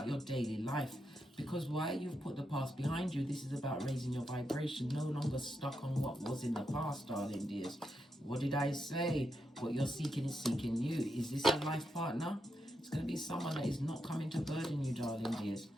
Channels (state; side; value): normal; both; correlation 0.84